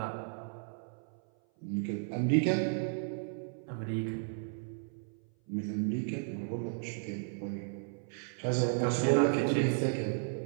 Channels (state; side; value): silent; left; 55 dB below the other